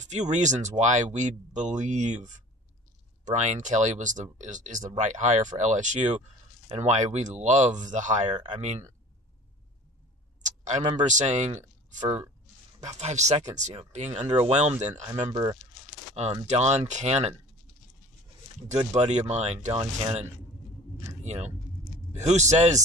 reasons why we believe Brian Kelly is the right hire for LSU, and why we love the hire. I mean, I remember saying for about 5 seconds, being underwhelmed, and I remember Don Cannon, good buddy of mine, Don Cannon, who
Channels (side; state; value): both; normal; correlation 0.44